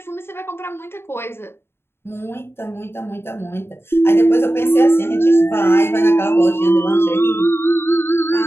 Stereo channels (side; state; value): right; late; 0.11 ms